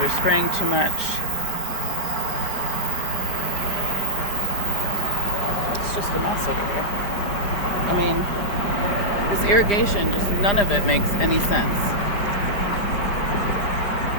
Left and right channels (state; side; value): late; right; 5.0 ms